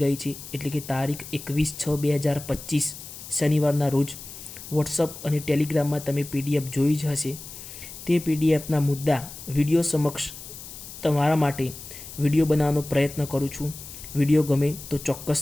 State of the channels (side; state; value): left; noise; hiss, 13 dB below the sound